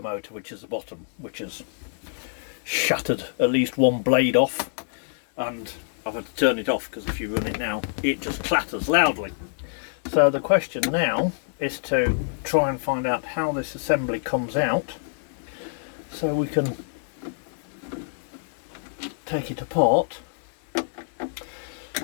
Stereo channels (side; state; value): right; silent; digital silence